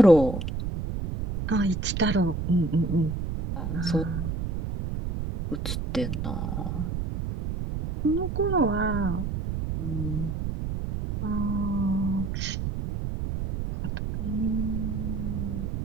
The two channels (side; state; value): right; noise; rumble, 3 dB below the sound